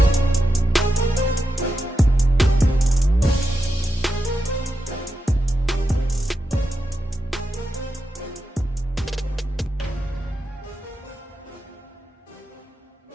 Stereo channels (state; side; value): normal; both; correlation 0.88